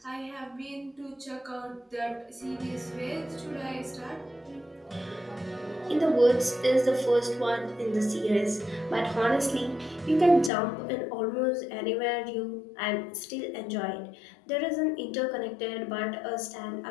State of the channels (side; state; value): right; drops out; at 10.5 s